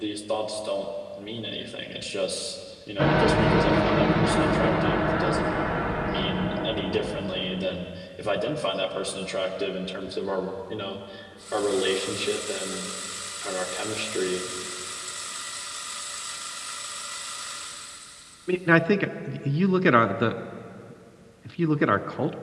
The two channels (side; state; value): both; identical; correlation 1.00